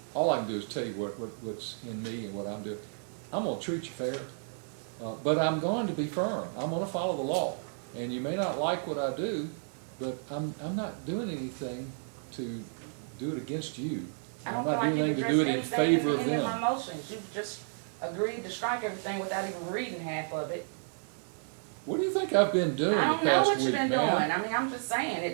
All I can do is tell you what's in me and what I'm doing. I'm gonna treat you fair, but I'm going to be firm. I'm gonna follow the law. And you may not like what I do, but I'm not doing anything to do it against you. I I'm don't not feel doing like anything to you do it in addressed anything favor of in any them. of my motions. You just agreed to strike everything without even reading half of it. What do you think I've been doing I the don't know past what you've week, been ma'am? doing. I mean, I'm just saying,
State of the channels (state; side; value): silent; left; 57 dB below the other